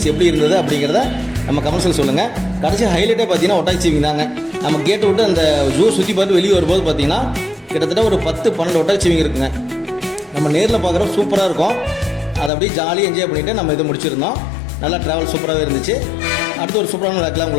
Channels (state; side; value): drops out; right; at 12.5 s